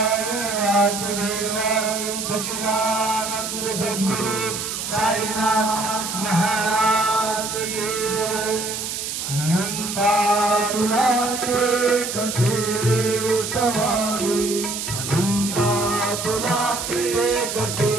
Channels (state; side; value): noise; right; hiss, 5 dB below the sound